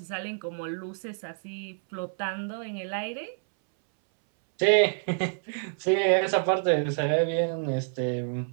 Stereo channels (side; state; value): left; silent; 59 dB below the other